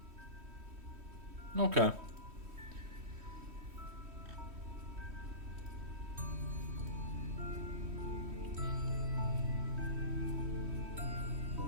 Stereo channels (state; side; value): late; left; 3.1 ms